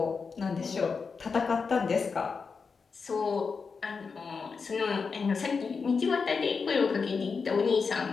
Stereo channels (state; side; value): quieter; right; 5.1 dB